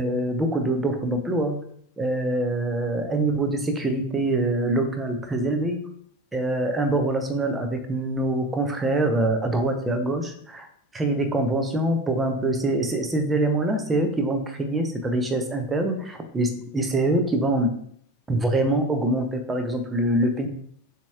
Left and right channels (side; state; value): both; normal; correlation 0.35